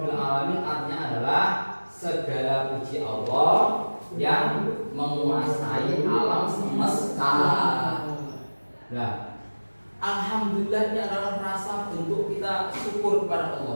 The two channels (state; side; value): inverted; both; correlation -1.00